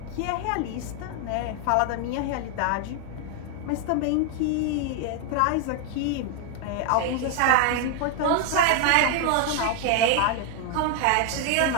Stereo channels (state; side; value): different; both; correlation 0.01